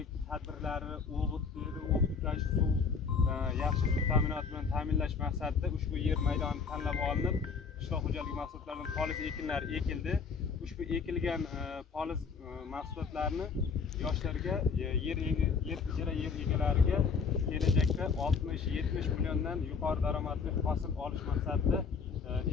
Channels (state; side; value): quieter; right; 5.4 dB